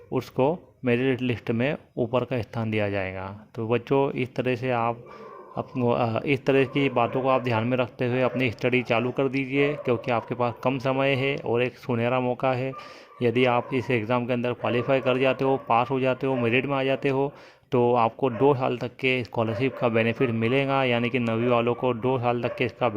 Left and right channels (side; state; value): both; identical; correlation 1.00